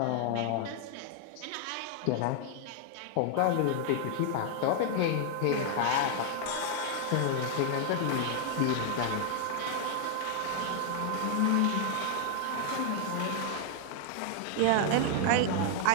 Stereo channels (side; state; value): both; different; correlation 0.00